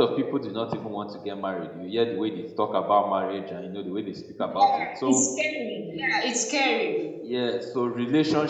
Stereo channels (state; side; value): identical; both; correlation 1.00